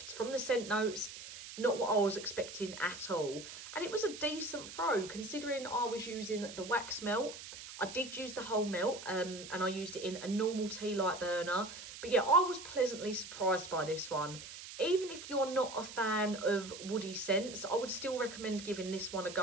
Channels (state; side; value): noise; right; hiss, 12 dB below the sound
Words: From the scent notes, not what I was expecting at all. And it was a decent throw, considering I was using the wax melt. I did use the whole melt, and I used it in a normal tea light burner. But yeah, I was pleasantly surprised by this one. Even if you're not a fan of woody scents, I would still recommend giving this one a